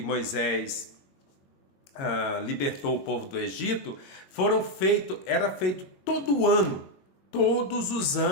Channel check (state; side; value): late; right; 22 ms